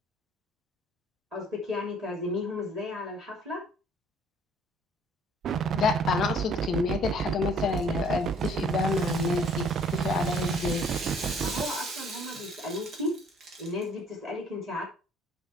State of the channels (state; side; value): normal; both; correlation 0.57